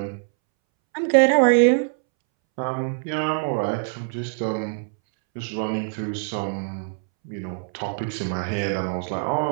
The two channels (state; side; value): silent; left; 63 dB below the other